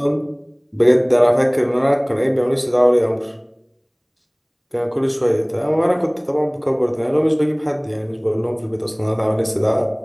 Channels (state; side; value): identical; both; correlation 1.00